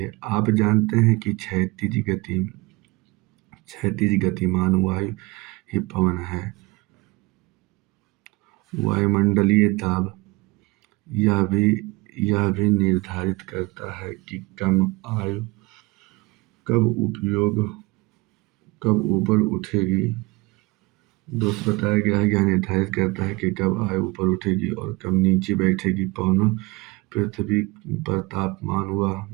आप जानते हैं कि क्षैतिज गतिमान वायु ही पवन है। वायुमंडलीय दाब यह भी निर्धारित करता है कि कम आयु कब ऊपर उठेगी। दोस्त बताया गया है, यह निर्धारित करता है कि कब आयु ऊपर उठेगी और कब नीचे बैठेगी। पवनों पृथ्वी पर तापमान व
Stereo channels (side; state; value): left; quieter; 23.4 dB